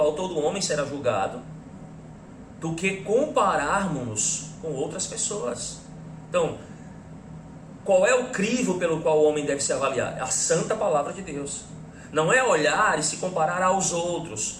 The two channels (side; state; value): both; identical; correlation 1.00